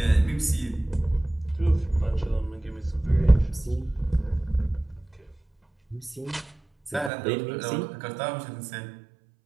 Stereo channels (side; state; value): left; drops out; at 7.1 s